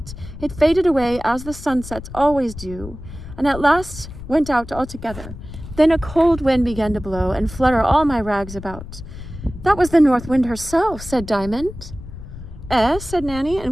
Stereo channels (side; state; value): left; noise; rumble, 13 dB below the sound